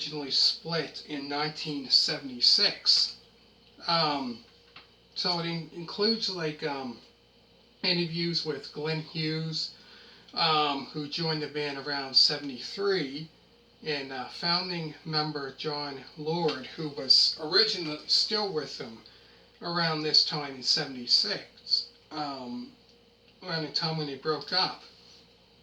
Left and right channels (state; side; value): identical; both; correlation 1.00